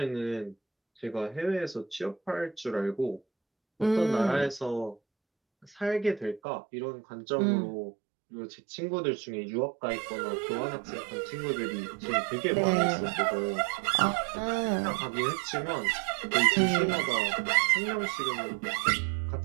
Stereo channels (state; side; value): drops out; left; at 6.4 s